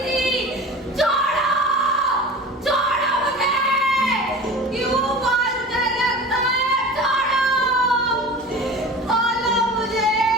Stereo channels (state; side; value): normal; both; correlation 0.36